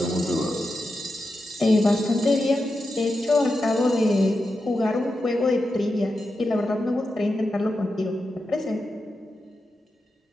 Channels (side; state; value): both; normal; correlation 0.89